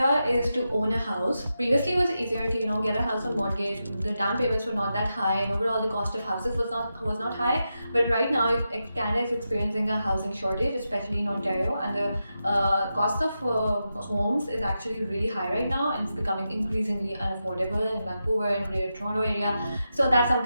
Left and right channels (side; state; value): both; inverted; correlation -0.89